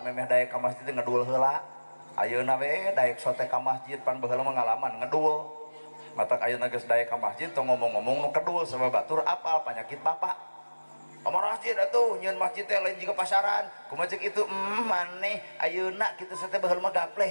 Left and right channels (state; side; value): inverted; both; correlation -1.00